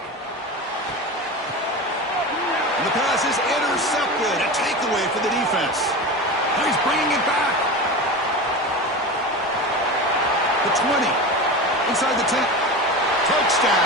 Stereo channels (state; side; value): normal; both; correlation 0.27